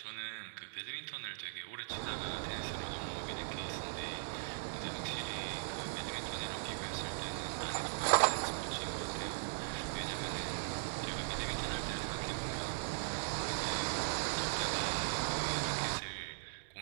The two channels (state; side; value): silent; left; digital silence